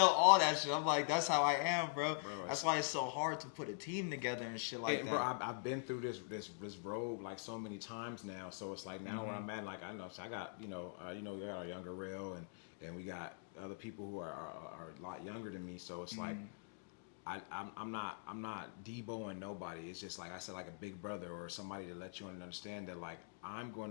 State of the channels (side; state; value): right; silent; digital silence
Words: all that shit. I'm like, that's how I am, bro. That's why it's so hard to put a team together and shit like that. Bro, I've been through this road like so many times now. So it's like now where I'm at, like, I know, so I got, you know, we got our younger rail, and we got other people who are a lot younger than me. So it's like, I'm not deboing nobody. It's just like I said, like a big brother or somebody to let you understand that like I'm going